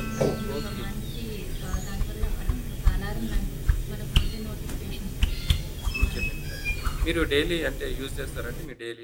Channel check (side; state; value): both; identical; correlation 1.00